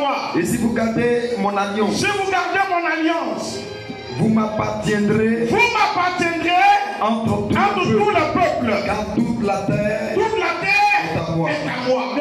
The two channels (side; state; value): both; identical; correlation 1.00